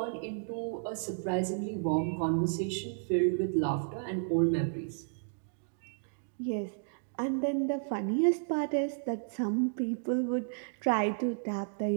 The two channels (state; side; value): silent; left; digital silence